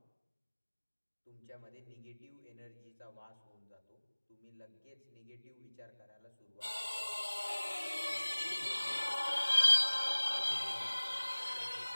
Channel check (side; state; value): both; inverted; correlation -1.00